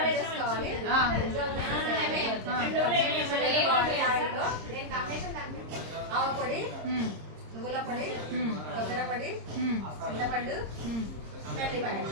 నువ్వుల పొడి, కొబ్బరి పొడి, చింతపండు,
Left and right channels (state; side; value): late; left; 26 ms